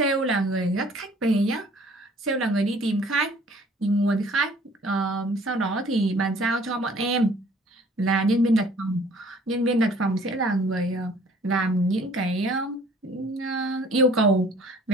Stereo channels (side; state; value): both; normal; correlation 0.54